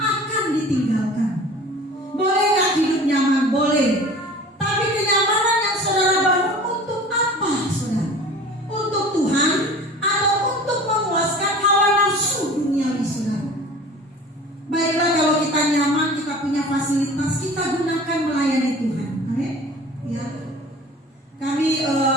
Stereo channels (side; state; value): both; normal; correlation 0.42